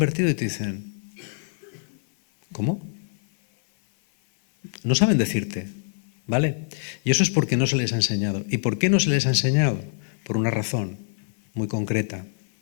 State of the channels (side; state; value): right; silent; 56 dB below the other